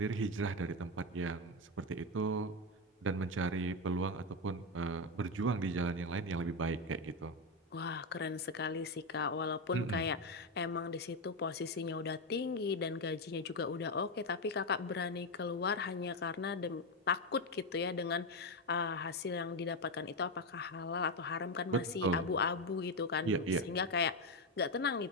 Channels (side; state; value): both; normal; correlation 0.09